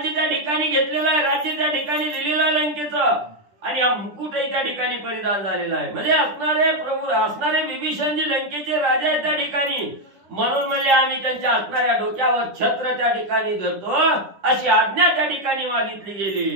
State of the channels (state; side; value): late; left; 10 ms